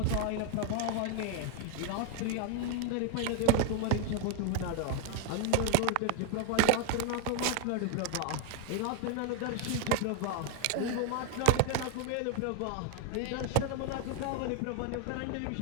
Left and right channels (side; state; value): both; different; correlation 0.01